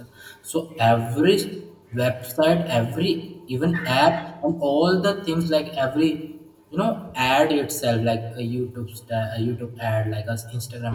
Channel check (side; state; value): both; identical; correlation 1.00